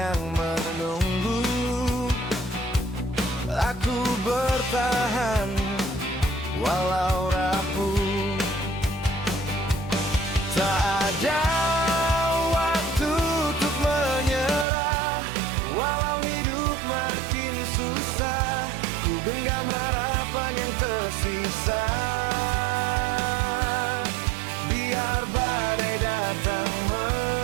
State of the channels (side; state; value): left; drops out; at 14.7 s